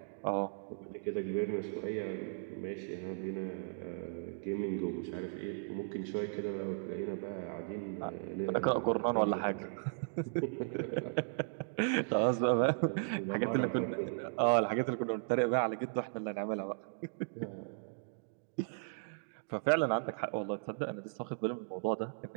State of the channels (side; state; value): left; silent; digital silence